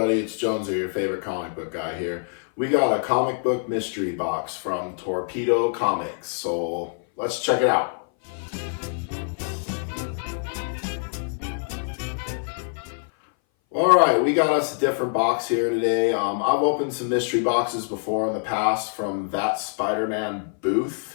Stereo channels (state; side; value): silent; right; 59 dB below the other